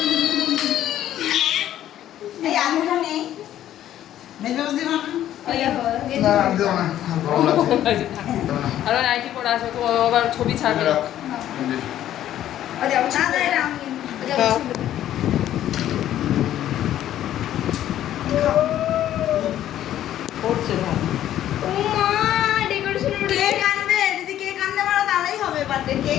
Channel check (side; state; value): right; quieter; 12.0 dB